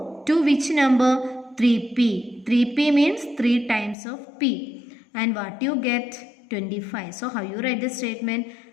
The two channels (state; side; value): drops out; right; at 4.0 s